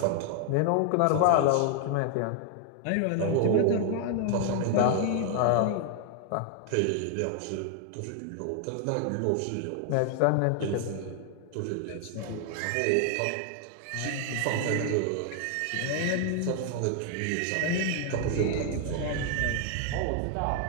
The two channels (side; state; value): both; different; correlation 0.00